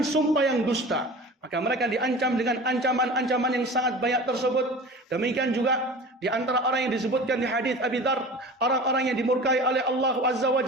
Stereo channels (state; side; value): normal; both; correlation 0.38